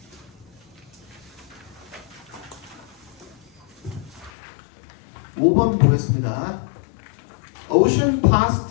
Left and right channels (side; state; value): right; drops out; at 4.3 s